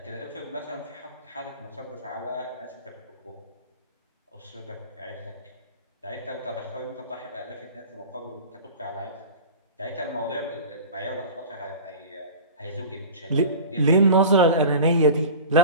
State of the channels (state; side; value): inverted; both; correlation -0.36